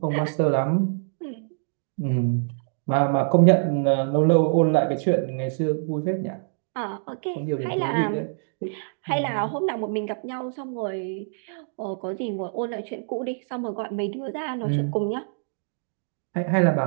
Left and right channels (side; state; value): left; silent; digital silence